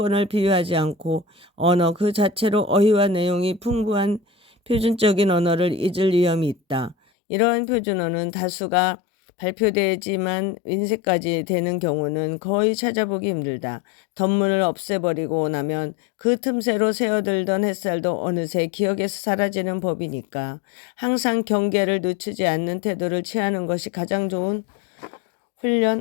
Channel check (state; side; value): drops out; right; at 7.0 s